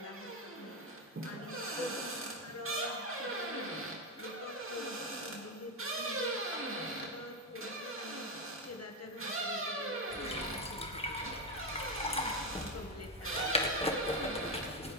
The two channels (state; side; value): normal; both; correlation 0.10